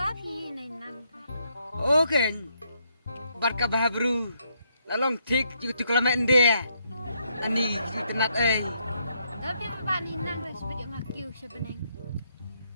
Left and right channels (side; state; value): both; inverted; correlation -0.75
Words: pilih nang. Okay. Barka bahabru. Lalong tik juga tu kelamaan dia. Ani kita nak Tapi apa ni nang sebab ngakiu sebeneng.